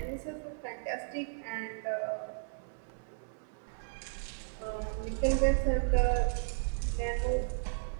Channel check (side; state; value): left; silent; 55 dB below the other